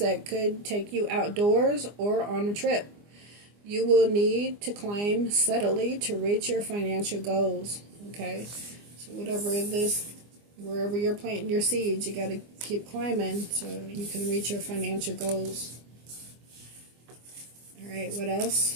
could take you outdoors or on a trip. You will need to climb steadily to reach your financial goals. Okay, so wherever you're planting your seeds, you got to keep climbing so you can reach your financial goals. All right, what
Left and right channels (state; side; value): late; left; 24 ms